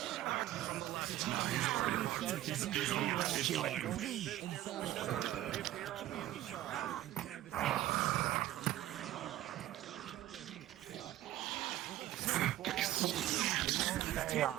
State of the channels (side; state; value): left; quieter; 14.2 dB